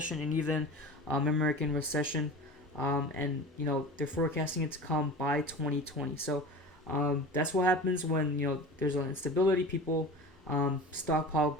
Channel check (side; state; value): both; normal; correlation 0.35